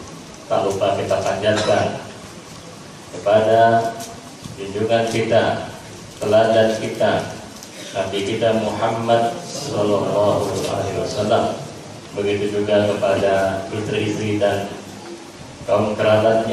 tak lupa kita panjatkan kepada junjungan kita, teladan kita, Nabi kita Muhammad sallallahu alaihi wasallam. Begitu juga kepada istri-istri dan kaum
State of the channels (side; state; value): both; identical; correlation 1.00